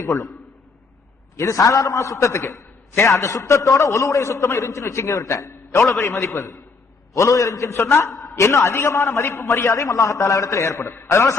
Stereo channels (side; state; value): right; quieter; 4.4 dB